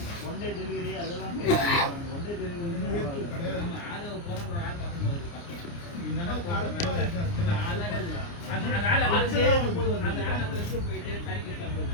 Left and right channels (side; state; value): right; late; 29 ms